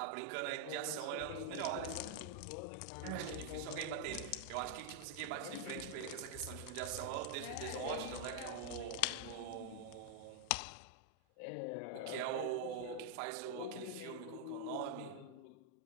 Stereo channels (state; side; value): different; both; correlation 0.00